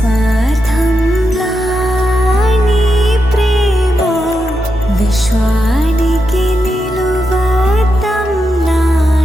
నీ ప్రేమ విశ్వానికి నిలువతం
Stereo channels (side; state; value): both; normal; correlation 0.86